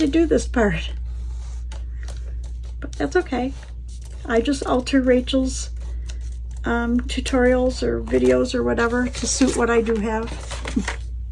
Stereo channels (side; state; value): both; identical; correlation 1.00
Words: do this part. But that's okay. I just alter Rachel's tutorials or videos or whatever to suit what I do have.